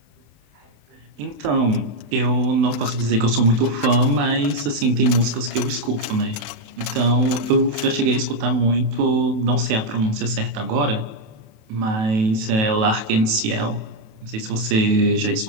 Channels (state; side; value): late; left; 28 ms